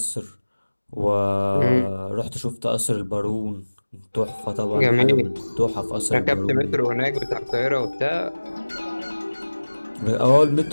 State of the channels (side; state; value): both; inverted; correlation -1.00